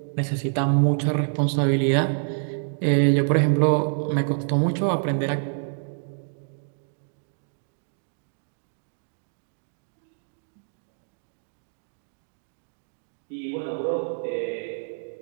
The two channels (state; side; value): silent; left; digital silence